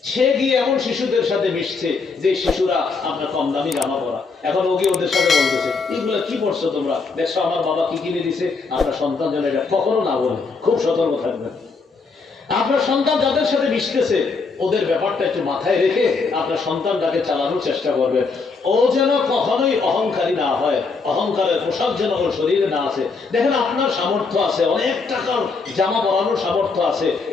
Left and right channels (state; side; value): quieter; right; 4.5 dB